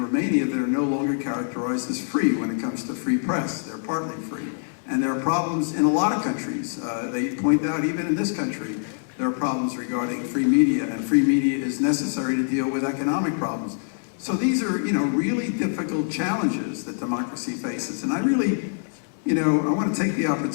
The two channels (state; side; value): silent; right; 62 dB below the other